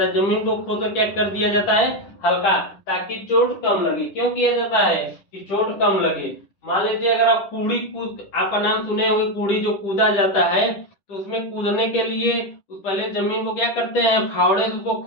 है। जमीन को खोदकर क्या कर दिया जाता है, हल्का, ताकि चोट कम लगे। क्यों किया जाता है कि चोट कम लगे। मान लीजिए अगर आप कूड़ी कूद, आपका नाम सुने होंगे कूड़ी जो कूदा जाता है, तो उसमें कूदने के लिए पहले जमीन को क्या करते हैं, फावड़े से उसको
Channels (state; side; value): late; right; 10 ms